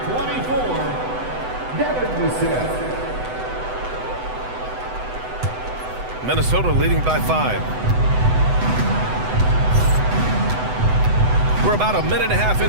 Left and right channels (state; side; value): late; left; 8.0 ms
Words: 24, Devin Cassell. Minnesota leading by 5. We're about a minute and a half